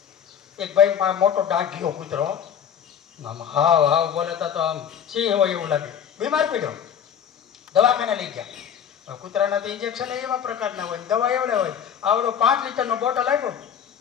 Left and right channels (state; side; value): quieter; right; 8.4 dB